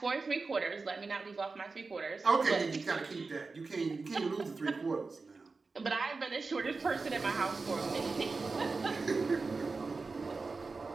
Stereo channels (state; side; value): quieter; left; 4.1 dB